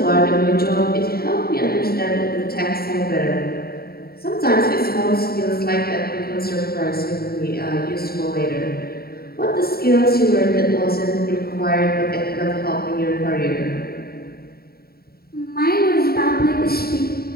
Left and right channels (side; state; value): right; late; 0.45 ms